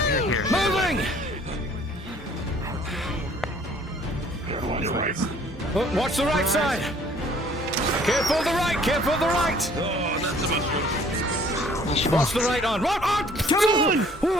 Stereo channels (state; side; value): normal; both; correlation 0.56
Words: Moving! Watch the right side! Careful the right! Careful the right! Oh, that's a mushroom. Watch the right on! Right on! Come on!